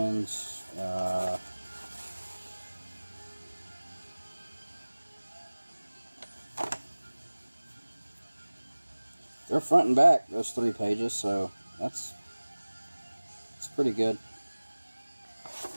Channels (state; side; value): inverted; both; correlation -1.00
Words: They're front and back, those 3 pages, so that's pretty good.